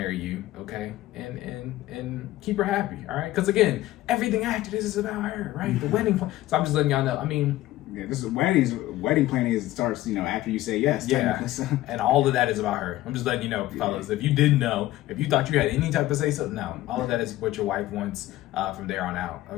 you, okay, and keep her happy, all right? Because again, everything after this is about her, right? The wedding. So I'm just letting y'all know. I mean, yeah, this is wedding planning starts, after you say yes. Yeah, so. And all of that is about her. I'm just letting you know, fellas. If you didn't know, if you thought you had any type of say so, no. All of that is what your wife wants from there on out,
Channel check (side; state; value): right; quieter; 15.9 dB